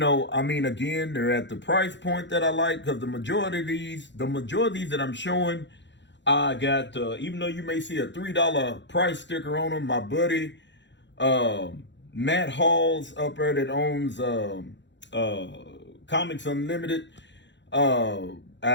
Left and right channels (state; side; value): late; right; 0.52 ms